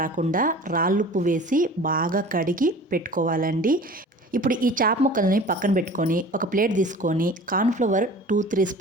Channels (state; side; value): normal; both; correlation 0.42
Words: రాళ్ళుప్పు వేసి బాగా కడిగి పెట్టుకోవాలండి. ఇప్పుడు ఈ చేప ముక్కల్ని పక్కన పెట్టుకొని ఒక ప్లేట్ తీసుకొని కార్న్ఫ్లవర్ 2-3